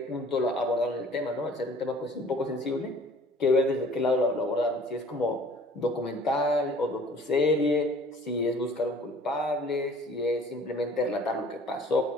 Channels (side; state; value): both; normal; correlation 0.51